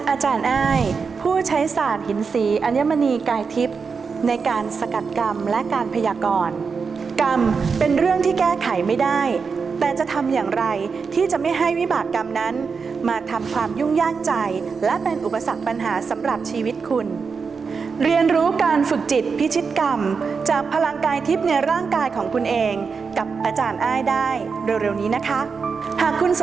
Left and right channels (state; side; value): quieter; left; 5.3 dB